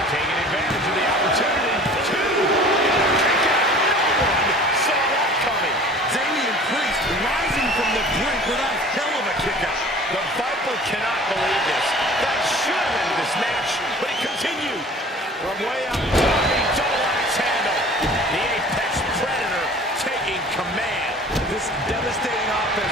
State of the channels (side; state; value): both; normal; correlation 0.46